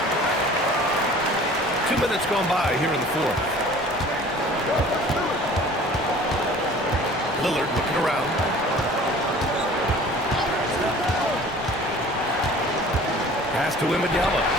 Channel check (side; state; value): both; normal; correlation 0.47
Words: 2 minutes gone by here in the 4th. Lillard looking around. Pass to Wembanyama.